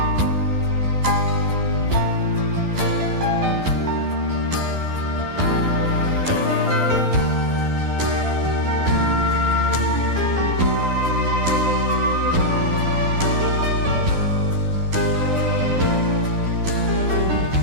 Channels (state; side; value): late; left; 12 ms